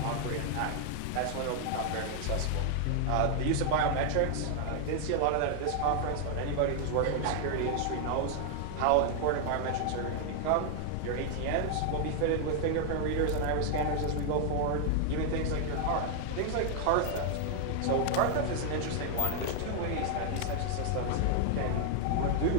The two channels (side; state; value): both; different; correlation 0.00